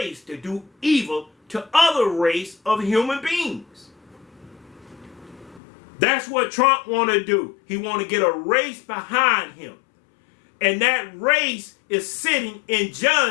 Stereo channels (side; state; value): right; drops out; at 5.6 s